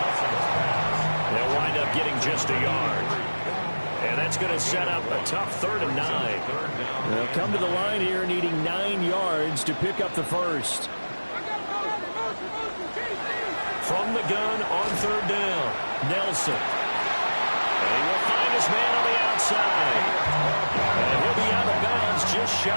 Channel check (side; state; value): both; inverted; correlation -1.00